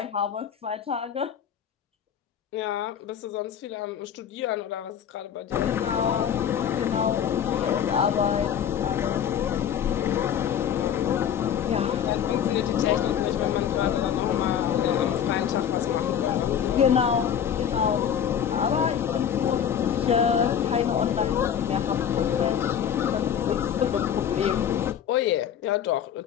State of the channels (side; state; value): right; quieter; 8.8 dB